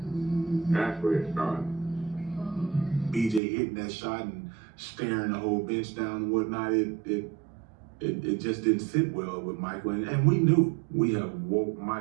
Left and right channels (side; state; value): left; drops out; at 3.4 s